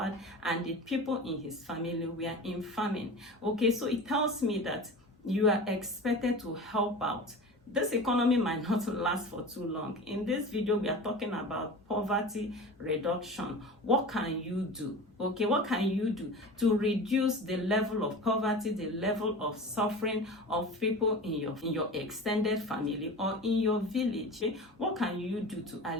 and the people in his family were in famine. Okay, so it tells me that you are expected to help out. This economy might not last for too long. In this video, we are talking about poverty reduction. What can you do? Okay, what can you do to reduce the level of poverty, the level of suffering of people in your extended family or in your village? Okay? What can you do to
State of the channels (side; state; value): both; normal; correlation 0.33